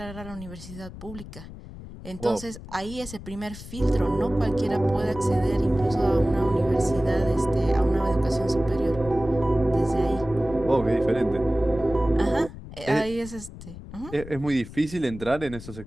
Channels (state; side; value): noise; left; rumble, 14 dB below the sound